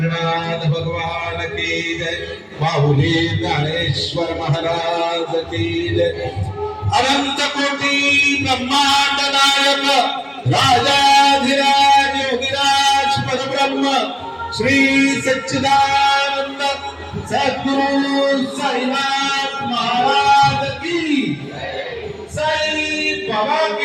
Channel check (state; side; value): identical; both; correlation 1.00